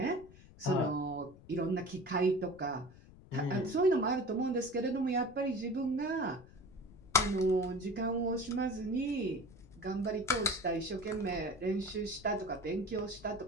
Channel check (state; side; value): noise; left; rumble, 21 dB below the sound